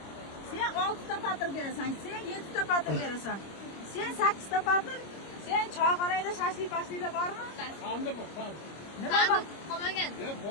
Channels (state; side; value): late; right; 25 ms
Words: Sen 6 ta patir berasan, sen 7 ta patir berasan. Sen 8 ta patir, sen choyxonada shashlik-pashliklar bormi? Qanday bu? Nima bor? Qolmagan.